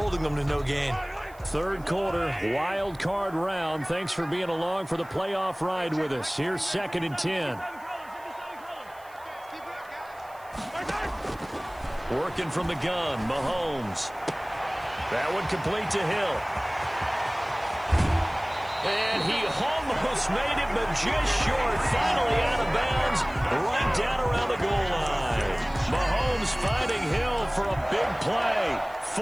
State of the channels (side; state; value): right; noise; hiss, 26 dB below the sound